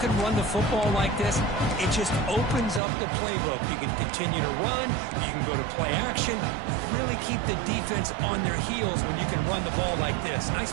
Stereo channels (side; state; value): left; drops out; at 2.8 s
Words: run the football like this, it just opens up the playbook. You can continue to run. You can go to play action. Really keep the defense on their heels when you can run the ball like this.